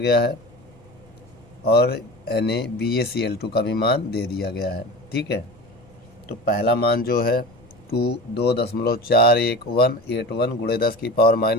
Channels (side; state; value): left; noise; rumble, 28 dB below the sound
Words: है, और NaBaCl2 का भी मान दे दिया गया है। ठीक है, तो पहला मान जो है 2.481 गुणे 10 की पावर